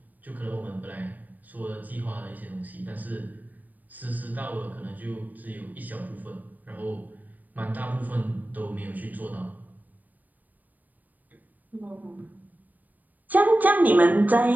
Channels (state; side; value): late; left; 0.083 ms